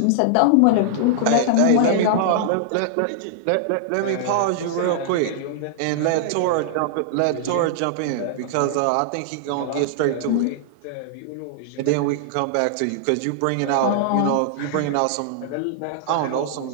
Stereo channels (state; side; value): different; both; correlation -0.01